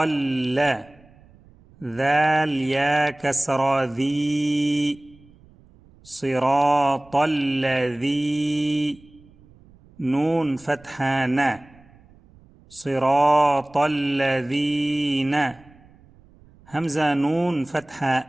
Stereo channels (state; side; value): noise; right; rumble, 27 dB below the sound